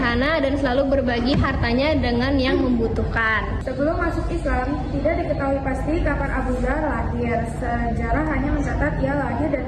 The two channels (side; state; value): both; identical; correlation 1.00